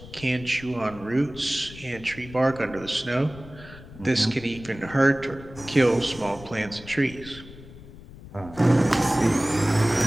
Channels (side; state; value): left; noise; rumble, 17 dB below the sound